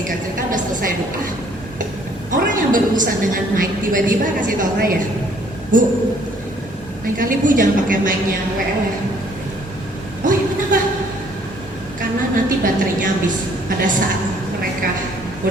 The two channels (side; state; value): both; normal; correlation 0.62